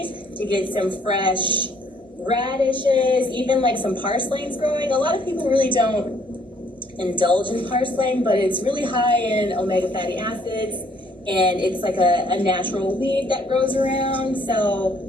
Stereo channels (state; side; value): normal; both; correlation 0.64